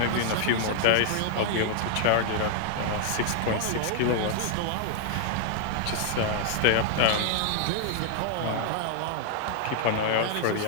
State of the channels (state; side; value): different; both; correlation 0.00